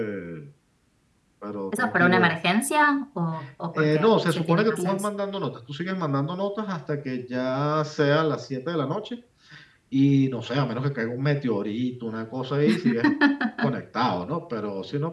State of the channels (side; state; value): both; identical; correlation 1.00